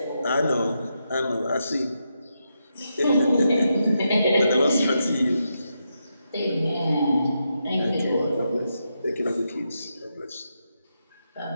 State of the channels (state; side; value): inverted; both; correlation -0.84